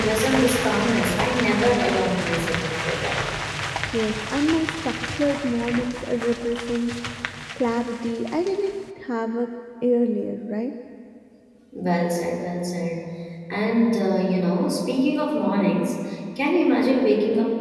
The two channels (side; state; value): both; identical; correlation 1.00